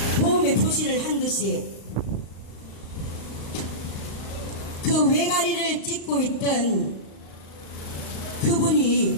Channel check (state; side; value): late; right; 35 ms